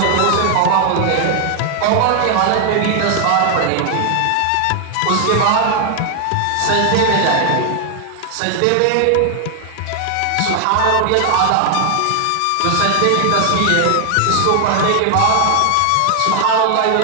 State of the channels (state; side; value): different; both; correlation 0.00